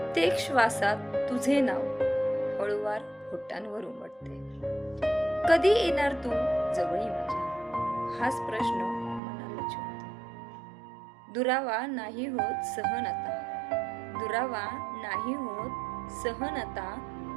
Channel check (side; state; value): left; drops out; at 9.2 s